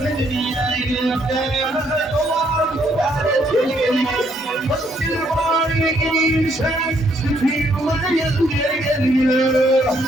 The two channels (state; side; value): normal; both; correlation 0.70